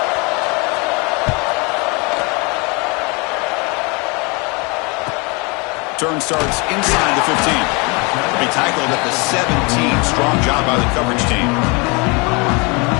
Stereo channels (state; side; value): quieter; right; 29.4 dB